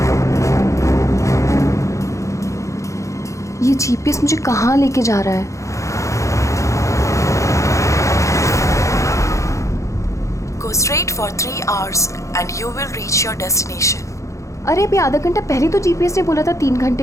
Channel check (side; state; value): right; late; 0.15 ms